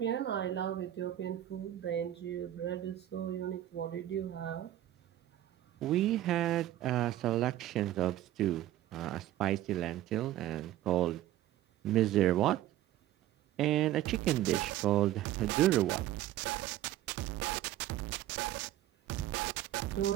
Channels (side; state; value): left; quieter; 13.4 dB